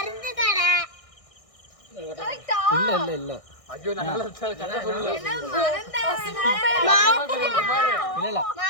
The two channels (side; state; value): right; late; 1.6 ms